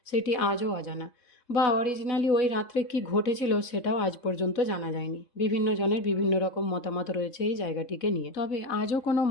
সেটি আজও অজানা, বা অরিজিনালি ওই রাত্রে কি ঘটেছিল সেটাও আজ পর্যন্ত জানা যায়নি। বিভিন্ন জনের বিভিন্ন রকম মতামত রয়েছে এই জায়গাটিকে নিয়ে, তবে আজও কোনো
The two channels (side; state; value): right; late; 3.7 ms